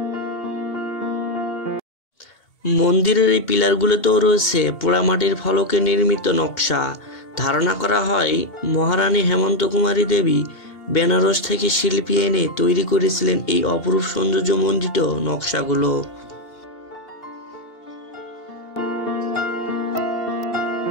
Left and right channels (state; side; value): late; right; 2.8 ms